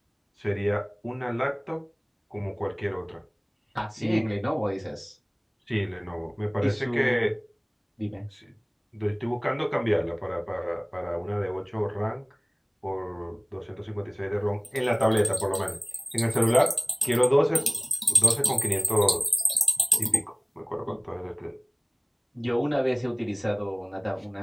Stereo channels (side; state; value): both; identical; correlation 1.00